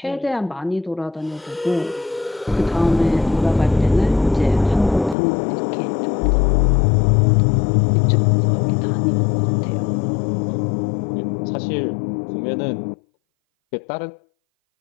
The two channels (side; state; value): right; drops out; at 5.2 s